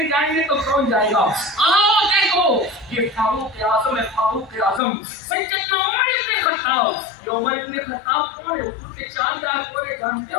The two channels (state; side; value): drops out; right; at 4.8 s